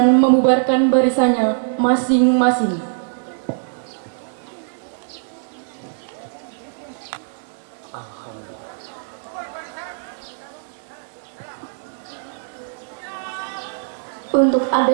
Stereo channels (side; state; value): left; silent; digital silence